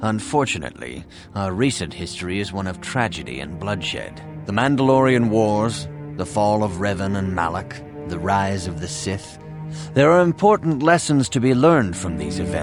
Unfortunately, our recent history is one of tragedy and bloodshed. The Mandalorian Wars, the fall of Revan and Malak, the rise of the Sith. There are important lessons to be learned from these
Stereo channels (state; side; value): identical; both; correlation 1.00